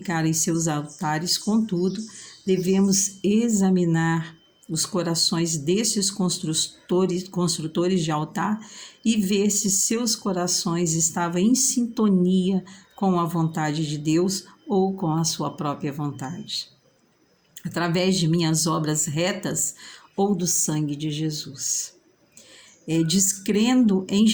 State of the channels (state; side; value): identical; both; correlation 1.00